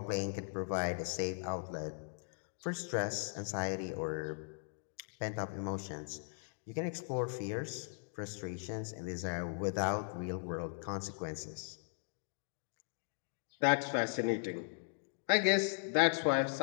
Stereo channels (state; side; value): silent; right; digital silence